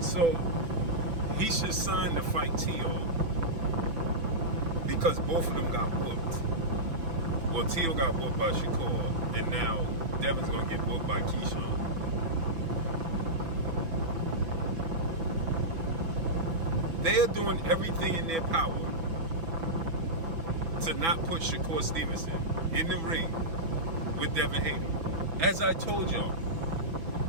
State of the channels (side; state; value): left; late; 6.0 ms